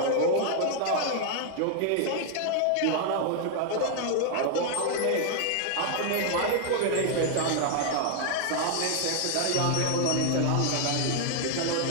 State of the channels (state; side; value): different; both; correlation 0.00